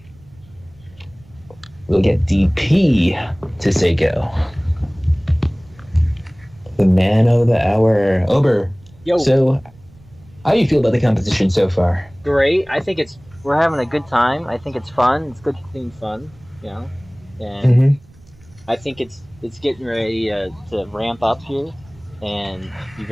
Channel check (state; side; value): noise; right; rumble, 26 dB below the sound